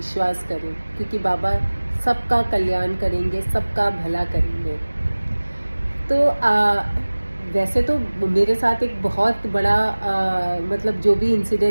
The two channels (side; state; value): both; inverted; correlation -1.00